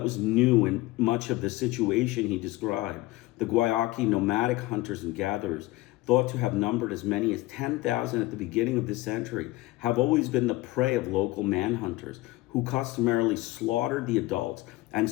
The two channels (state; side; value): quieter; right; 19.2 dB